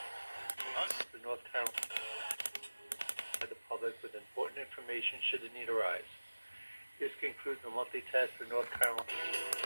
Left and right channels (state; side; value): inverted; both; correlation -1.00